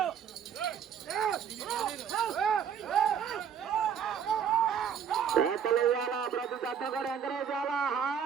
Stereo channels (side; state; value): left; quieter; 7.9 dB